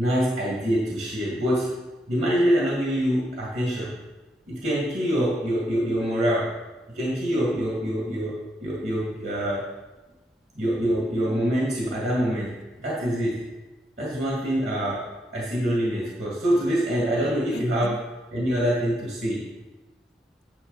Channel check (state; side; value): normal; both; correlation 0.78